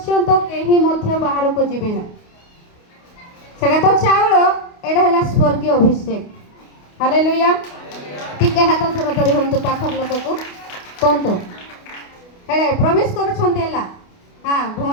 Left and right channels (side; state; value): right; late; 28 ms